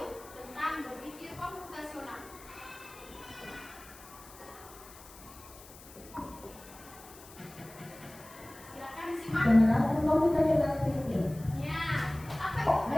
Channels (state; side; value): noise; left; hiss, 19 dB below the sound